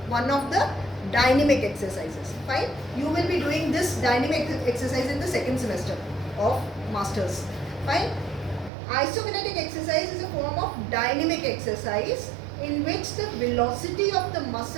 one of the dynamic exercises. Fine, you will be doing this dynamic exercise in the second semester of masters. Fine, isokinetic exercise is a form of dynamic exercise in which the velocity of the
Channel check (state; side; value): drops out; left; at 8.7 s